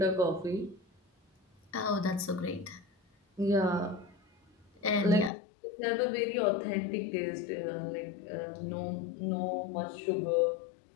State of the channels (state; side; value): drops out; right; at 5.3 s